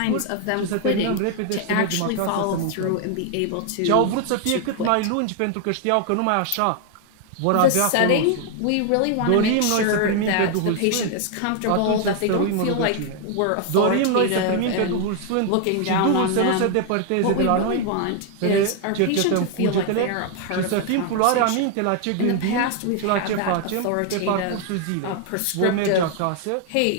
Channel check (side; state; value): both; different; correlation 0.00